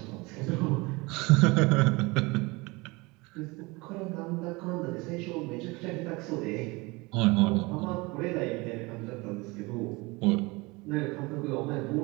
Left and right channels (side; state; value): left; quieter; 24.6 dB